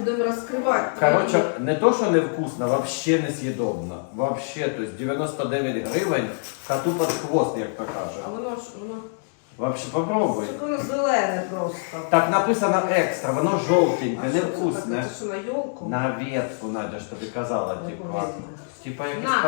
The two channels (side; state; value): right; silent; digital silence